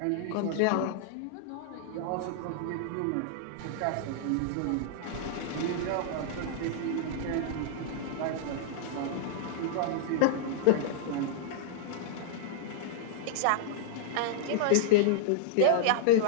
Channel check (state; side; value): different; both; correlation -0.01